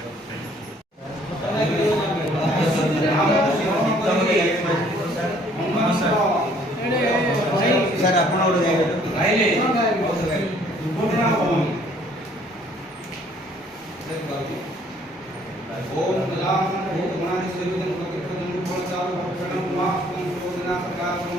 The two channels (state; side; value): normal; both; correlation 0.60